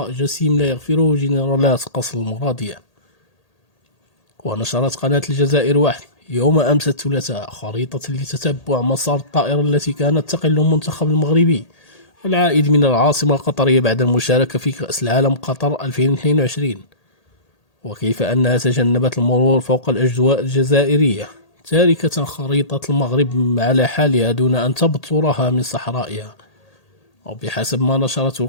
جسيم لا يغفره جنرالات قصر المرادية. ونشرت قناة الجزائر واحد يوم أمس الثلاثاء خريطة لتتبع مسار الطائرة التي كانت تقل المنتخب المغربي العائد من العاصمة القطرية بعد المشاركة في كأس العالم قطر 2022، وكيف أنها تجنبت المرور فوق الأجواء الجزائرية، تاركة خريطة المغرب على حالها دون أن تبترها من صحرائها. وبحسب ما نشرته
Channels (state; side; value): late; right; 1.8 ms